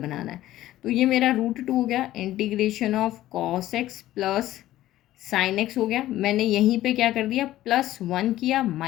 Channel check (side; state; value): right; quieter; 14.6 dB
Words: है। तो ये मेरा √2 हो गया, integration of cos x plus sine x हो गया। मैंने यहीं पर क्या कर दिया, +1 किया,